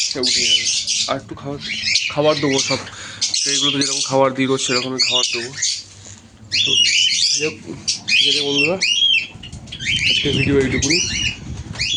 সে উঠে যাবে। আর একটু খাবার দেবো, সব ট্রেগুলোতে যেরকম খাবার দিই রোজ সেরকমই খাবার দেবো। তো যাই হোক, ঠিক আছে বন্ধুরা, আজকে ভিডিও এইটুকুনি,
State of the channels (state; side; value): identical; both; correlation 1.00